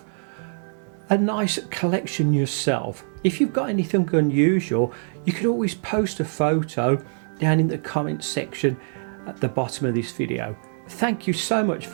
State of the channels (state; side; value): silent; left; digital silence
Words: a nice collection yourself. If you've got anything unusual, you could always post a photo down in the comment section at the bottom of this video. Thank you so much